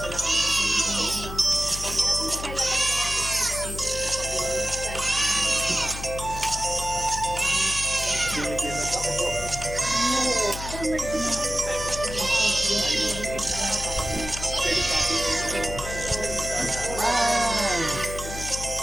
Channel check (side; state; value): left; noise; hum, 9 dB below the sound